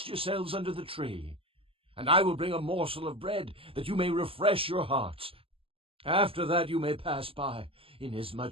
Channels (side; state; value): left; late; 0.27 ms